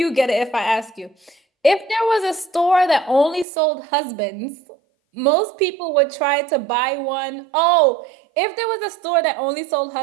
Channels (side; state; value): left; drops out; at 3.5 s